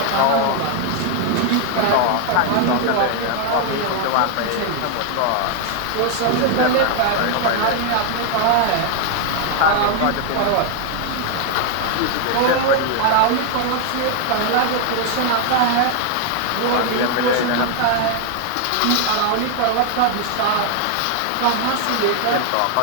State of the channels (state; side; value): different; both; correlation 0.00